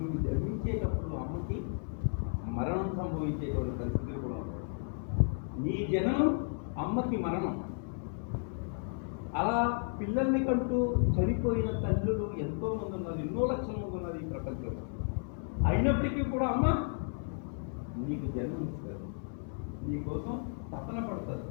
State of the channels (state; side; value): silent; right; 55 dB below the other